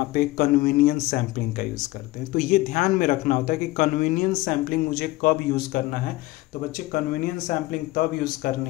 पे कन्वीनियंस सैंपलिंग का यूज करते हैं। तो ये ध्यान में रखना होता है कि कन्वीनियंस सैंपलिंग मुझे कब यूज करना है। तो बच्चे कन्वीनियंस सैंपलिंग तब यूज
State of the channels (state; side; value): quieter; right; 19.2 dB